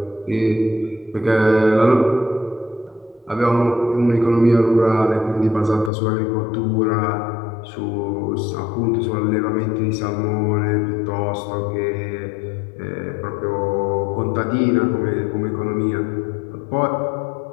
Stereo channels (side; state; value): right; drops out; at 5.9 s